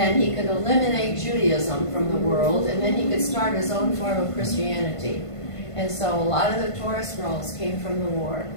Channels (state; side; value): late; right; 1.5 ms